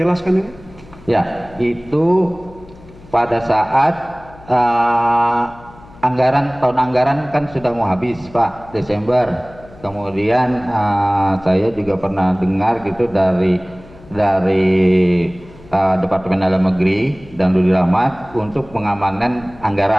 ini? Ya, itu pada saat tahun anggaran kan sudah mau habis Pak, Desember. Kemudian saya juga pernah dengar gitu dari Departemen Dalam Negeri dan Budi Rahmat untuk pengamanan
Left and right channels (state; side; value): noise; left; hum, 22 dB below the sound